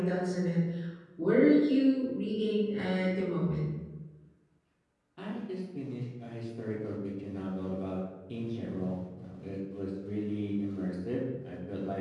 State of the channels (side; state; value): both; identical; correlation 1.00